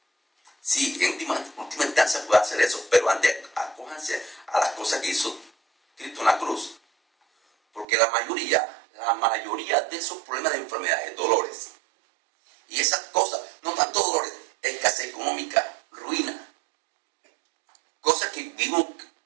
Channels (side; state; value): left; drops out; at 7.9 s